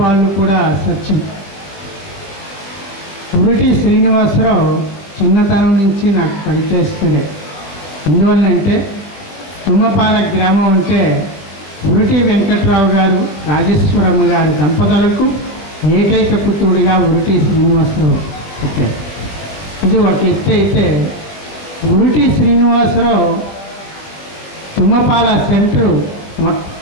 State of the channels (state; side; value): late; right; 20 ms